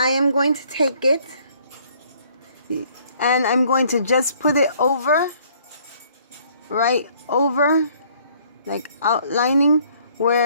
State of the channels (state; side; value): inverted; both; correlation -0.61